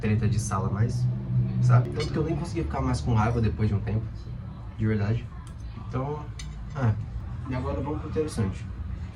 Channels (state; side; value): identical; both; correlation 1.00